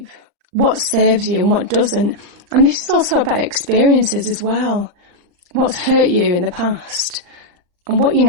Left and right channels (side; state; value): left; late; 39 ms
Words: what serves you and what doesn't. And this is also about experiences as well. What's hurt you in the past and what you